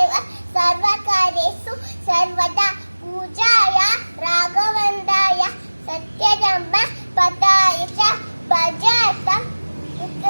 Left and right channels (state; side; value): inverted; both; correlation -1.00